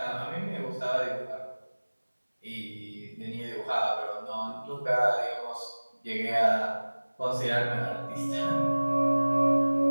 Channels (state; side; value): inverted; both; correlation -1.00